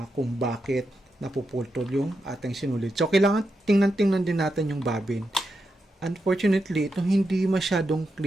kung bakit napuputol yung ating sinulid. So, kailangan tingnan-tingnan din natin yung bobbin. Unfortunately, ito hindi masyadong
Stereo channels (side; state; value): both; normal; correlation 0.86